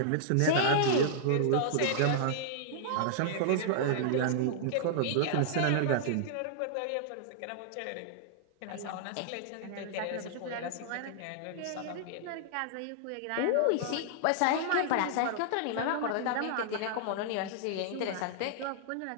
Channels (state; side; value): different; both; correlation -0.01